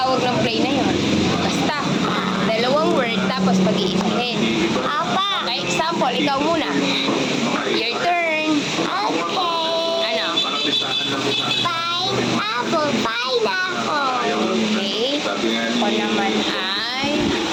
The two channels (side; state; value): both; identical; correlation 1.00